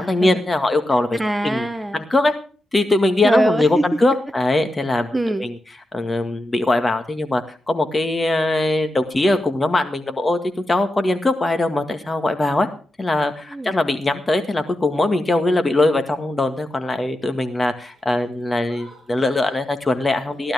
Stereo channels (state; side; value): normal; both; correlation 0.89